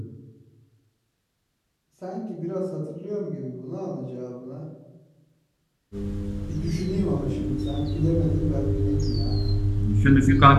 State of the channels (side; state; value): both; identical; correlation 1.00